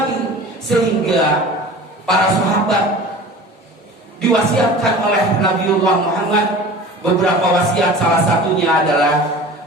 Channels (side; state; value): both; normal; correlation 0.39